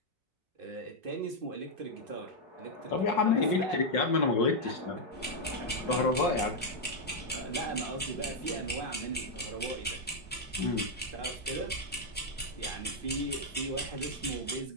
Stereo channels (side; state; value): both; normal; correlation -0.01